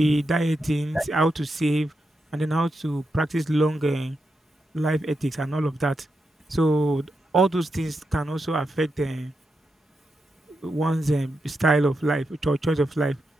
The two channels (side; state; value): both; normal; correlation 0.86